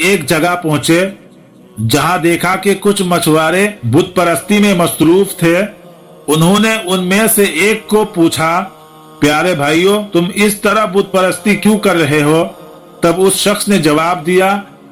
جگہ پہنچے جہاں دیکھا کہ کچھ مچھوارے بت پرستی میں مصروف تھے۔ انہوں نے ان میں سے ایک کو پوچھا، پیارے بھائیو، تم اس طرح بت پرستی کیوں کر رہے ہو؟ تب اس شخص نے جواب دیا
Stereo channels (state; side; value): identical; both; correlation 1.00